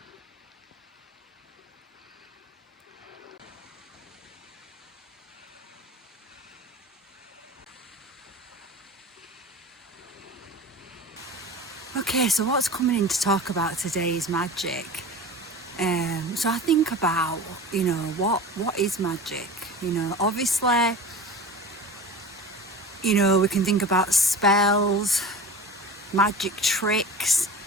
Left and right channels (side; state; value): both; normal; correlation 0.34